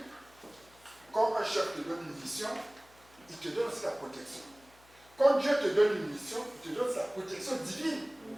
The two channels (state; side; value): noise; left; hum, 28 dB below the sound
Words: quand un chef te donne une mission, il te donne aussi la protection. Quand Dieu te donne une mission, il te donne sa protection divine.